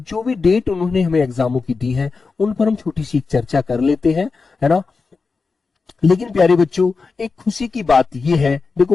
भी डेट उन्होंने हमें एग्जामों की दी है उन पर हम छोटी सी चर्चा कर लेते हैं, है ना। लेकिन प्यारे बच्चों, एक खुशी की बात यह है,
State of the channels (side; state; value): right; quieter; 4.5 dB